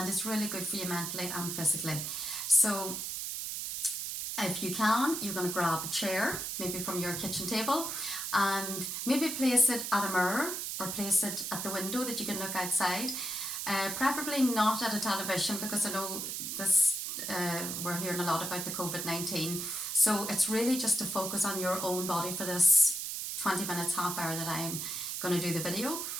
it's really good for you mentally and physically. So if you can, you're going to grab a chair, maybe from your kitchen table, and maybe place it at a mirror or place it at the window that you can look outside. Preferably not at a television, because I know this we're hearing a lot about the COVID-19. So it's really just to focus on your own body for this 20 minutes, half hour that I'm going to do the video.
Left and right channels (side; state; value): right; noise; hiss, 4 dB below the sound